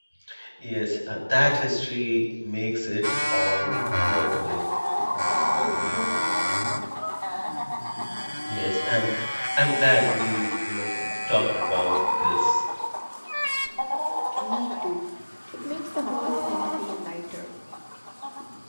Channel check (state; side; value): inverted; both; correlation -1.00